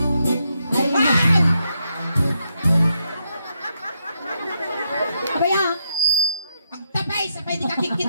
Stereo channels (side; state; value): both; inverted; correlation -0.80